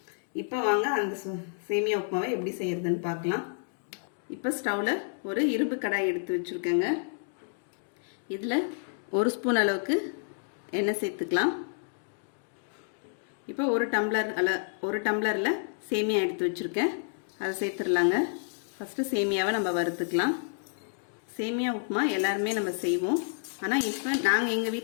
இப்போ வாங்க அந்த சேமியா உப்புமாவை எப்படி செய்யறதுன்னு பார்க்கலாம். இப்போ ஸ்டவ்ல ஒரு இரும்பு கடாய் எடுத்து வச்சிருக்கேங்க. இதுல 1 ஸ்பூன் அளவுக்கு எண்ணெய் சேர்த்துக்கலாம். இப்போ ஒரு டம்ளரில் சேமியா எடுத்து வச்சுருக்கேன், அதை சேர்த்துடலாங்க. ஃபஸ்ட்டு சேமியாவை நம்ம வறுத்துக்கலாம். சேமியா உப்புமா எல்லாருமே நம்ம செய்வோம், ஆனால் இப்போ நாங்கள் எங்கள்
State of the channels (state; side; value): silent; right; digital silence